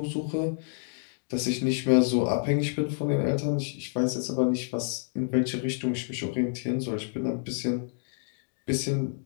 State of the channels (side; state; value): right; silent; digital silence